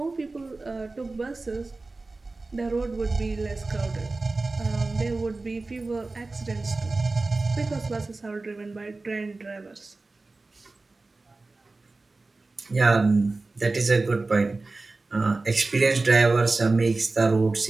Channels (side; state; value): left; quieter; 3.4 dB